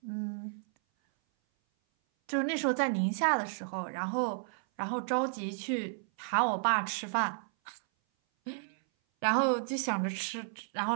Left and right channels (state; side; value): silent; left; 56 dB below the other